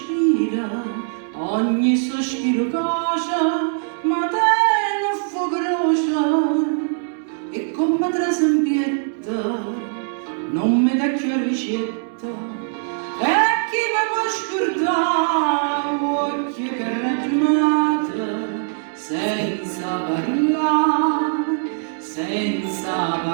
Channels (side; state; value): left; silent; digital silence